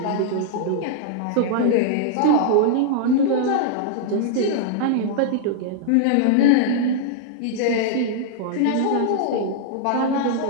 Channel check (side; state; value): both; different; correlation -0.01